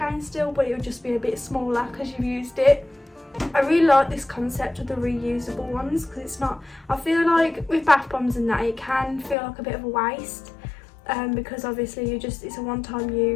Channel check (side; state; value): right; drops out; at 9.3 s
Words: still, but it'll just be a bit smaller because you've used it. I really like this concept of the reusable ones because it's not, I feel like with bath bombs and that it can feel like a bit of a waste, because obviously it's a one-time